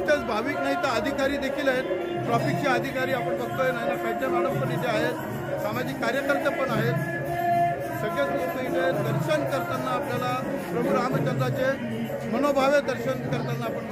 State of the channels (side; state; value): both; identical; correlation 1.00